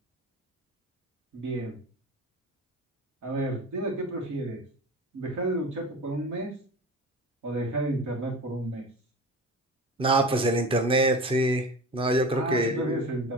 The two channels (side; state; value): both; normal; correlation 0.33